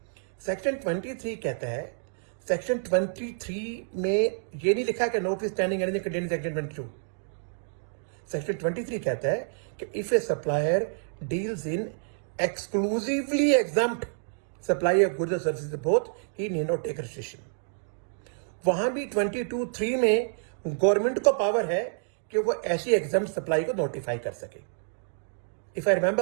Section 23 कहता है, सेक्शन 23 में ये नहीं लिखा कि notwithstanding anything contained in section 22। Section 23 कहता है कि if a supplier deals in exclusively exempt supply of goods और services both he need not take registration. वहां भी 22(3) में गवर्नमेंट को पावर है कि वो ऐसी एग्जम्प्ट सप्लाई को नोटिफाई कर सके। If I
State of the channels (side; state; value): left; silent; digital silence